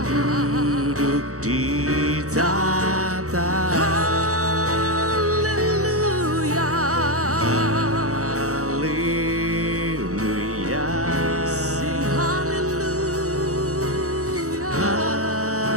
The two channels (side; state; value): left; late; 0.65 ms